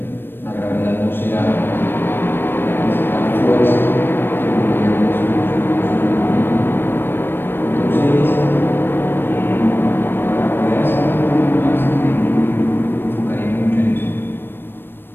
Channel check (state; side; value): late; right; 0.098 ms